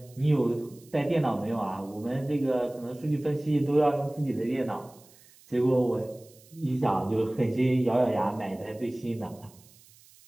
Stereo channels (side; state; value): right; noise; hiss, 26 dB below the sound